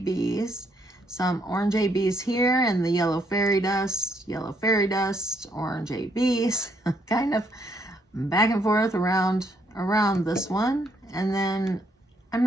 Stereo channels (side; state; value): both; normal; correlation 0.72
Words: some orange ABs here, and the yellow fairy dust, orange ABs, kind of back and forth around this one. And then I'm